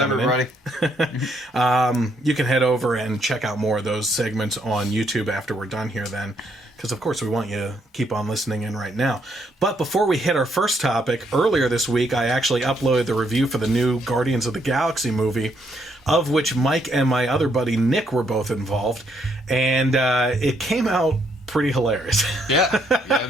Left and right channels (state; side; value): normal; both; correlation 0.73